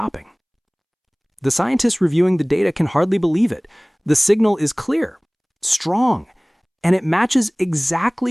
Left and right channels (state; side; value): identical; both; correlation 1.00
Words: The scientists reviewing the data can hardly believe it. The signal is clear, strong, and it matches